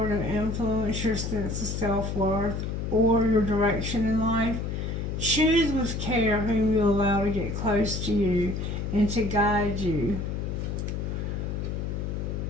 to influence your sense of self-worth or your direction in life? Choose with care whom you allow to get close to you and to guide you.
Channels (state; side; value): noise; left; hum, 3 dB below the sound